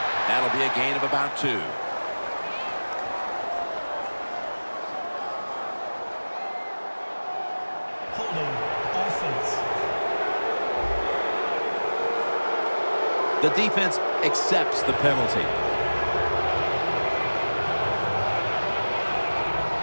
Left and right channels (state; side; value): inverted; both; correlation -1.00